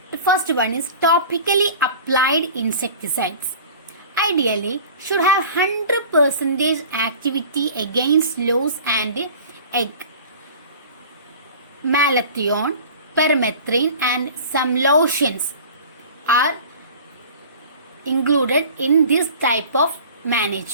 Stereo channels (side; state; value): both; inverted; correlation -0.41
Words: The first one is topically applied insecticides. Ideally should have 100% activity against louse and egg. Malathion, permethrin and some lotions are included in this type of